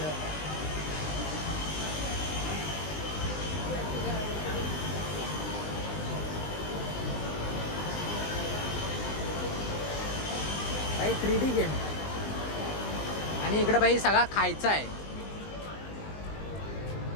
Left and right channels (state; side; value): late; right; 20 ms